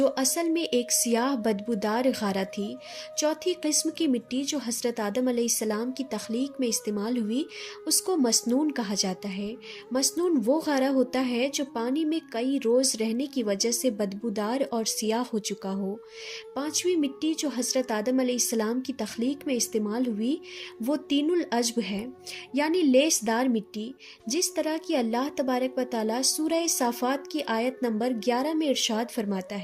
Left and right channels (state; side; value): identical; both; correlation 1.00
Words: اصل میں ایک سیاہ بدبودار غارہ تھی۔ چوتھی قسم کی مٹی جو حضرت آدم علیہ السلام کی تخلیق میں استعمال ہوئی اس کو مسنون کہا جاتا ہے۔ مسنون وہ غارہ ہوتا ہے جو پانی میں کئی روز رہنے کی وجہ سے بدبودار اور سیاہ ہو چکا ہو۔ پانچویں مٹی جو حضرت آدم علیہ السلام کی تخلیق میں استعمال ہوئی وہ طین العجب ہے، یعنی لیس دار مٹی، جس طرح کہ اللہ تبارک و تعالیٰ سورہ صافات کی آیت نمبر 11 میں ارشاد فرماتا